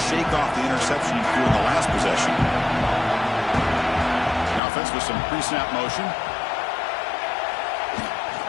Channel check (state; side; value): drops out; right; at 4.6 s